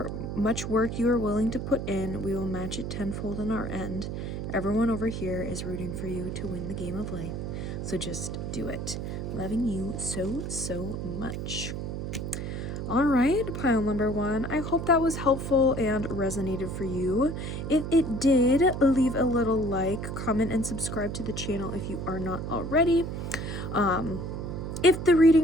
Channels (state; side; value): noise; right; hum, 5 dB below the sound